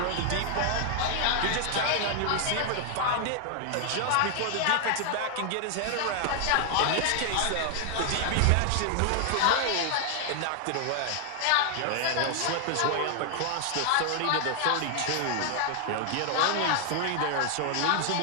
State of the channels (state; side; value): different; both; correlation 0.00